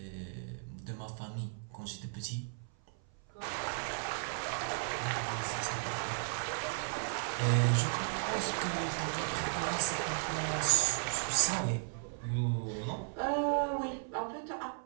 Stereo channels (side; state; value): left; silent; 54 dB below the other